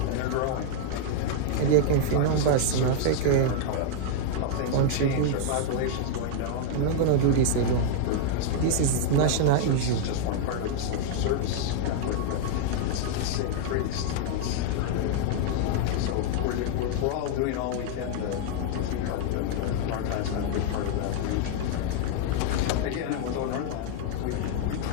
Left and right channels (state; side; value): different; both; correlation 0.00